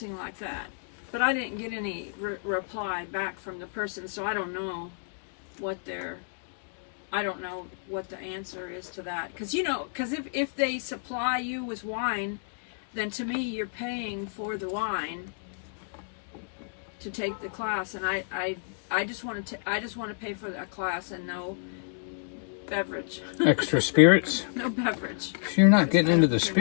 like that. But I didn't get any reply back from the person, so I don't know what I don't know what the answer is to that. Because, you know, if they supply you with wine, then to me you're paying for the wine to take the class, and I just want to pay for that class and no beverage. Extra spirits? No beverage. You're not getting into the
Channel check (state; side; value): silent; right; digital silence